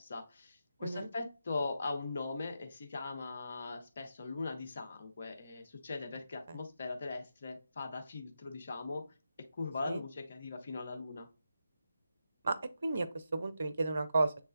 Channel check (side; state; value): both; inverted; correlation -0.87